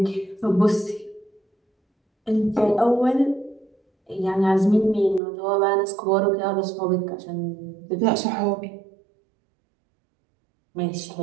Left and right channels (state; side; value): drops out; left; at 5.2 s